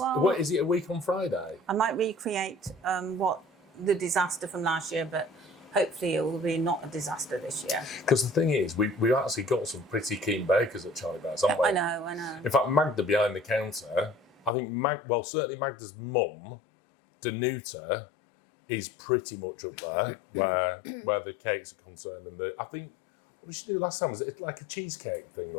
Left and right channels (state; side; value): drops out; right; at 14.5 s